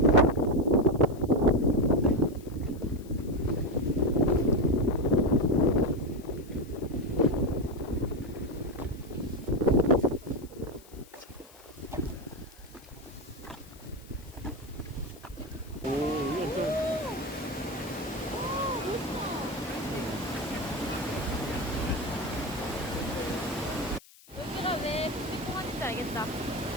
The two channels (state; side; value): noise; left; hiss, 24 dB below the sound